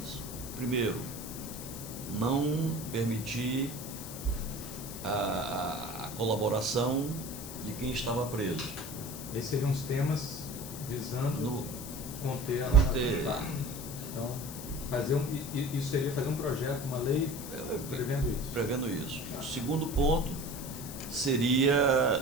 Primeiro, não permitir a colaboração de quem estava preso. Esses seriam os temas visando conter a Conter. Tá. Então, isso seria fazer um projeto, uma lei prevendo isso. Prevendo isso. O segundo ponto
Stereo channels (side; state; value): left; noise; hiss, 11 dB below the sound